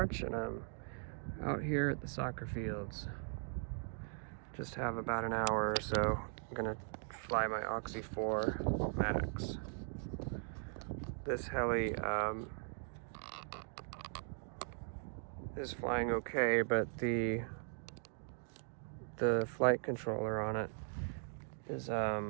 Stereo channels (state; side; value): silent; left; 51 dB below the other